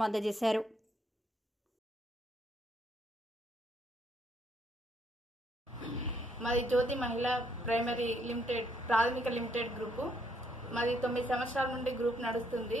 అందజేశారు. మాది జ్యోతి మహిళా ప్రైమరీ లిమిటెడ్ ప్రాథమిక లిమిటెడ్ గ్రూపు. మాది 9 సంవత్సరాల నుండి గ్రూప్ నడుస్తుంది.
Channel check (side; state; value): both; normal; correlation 0.72